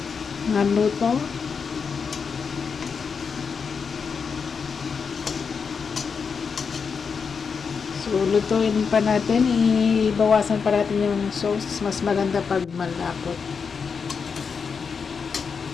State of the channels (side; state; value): right; quieter; 5.8 dB